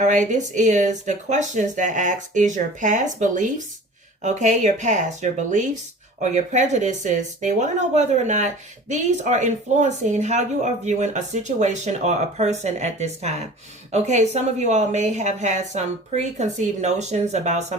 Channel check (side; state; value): both; normal; correlation 0.42